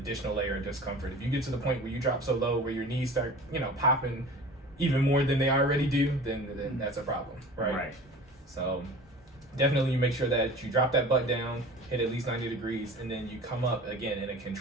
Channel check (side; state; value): both; normal; correlation 0.40